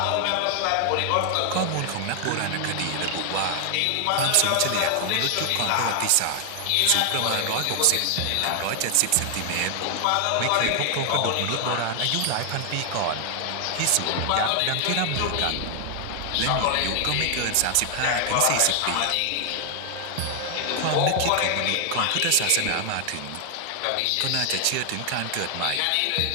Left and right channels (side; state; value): both; different; correlation 0.00